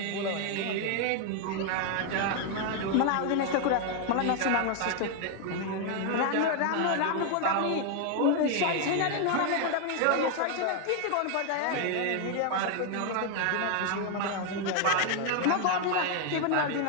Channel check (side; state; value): both; different; correlation 0.00